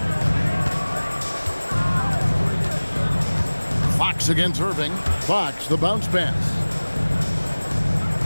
Fox against Irving. Fox, the bounce pass.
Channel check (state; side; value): inverted; both; correlation -1.00